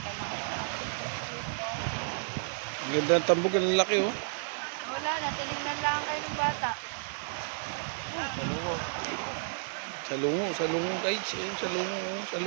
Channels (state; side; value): silent; left; digital silence